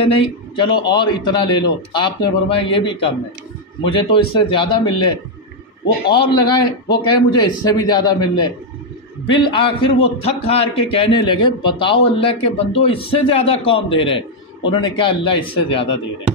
نہیں چلو اور اتنا لے لو، آپ نے فرمایا یہ بھی کم ہے، مجھے تو اس سے زیادہ مل لے، وہ اور لگائے، وہ کہے مجھے اس سے بھی زیادہ مل لے، بالآخر وہ تھک ہار کے کہنے لگے بتاؤ اللہ کے بندو اس سے زیادہ کون دے رہے؟ انہوں نے کہا اللہ اس سے زیادہ دے رہے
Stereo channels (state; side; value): normal; both; correlation 0.00